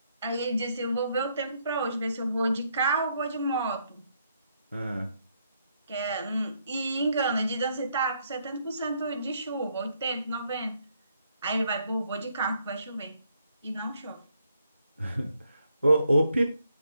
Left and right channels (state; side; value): inverted; both; correlation -0.73